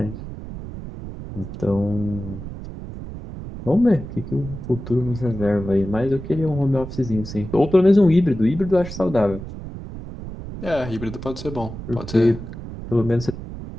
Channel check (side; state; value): right; noise; rumble, 10 dB below the sound